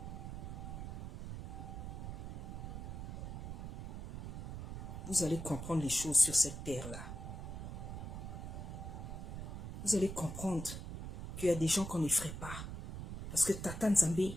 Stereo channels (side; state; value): right; noise; rumble, 6 dB below the sound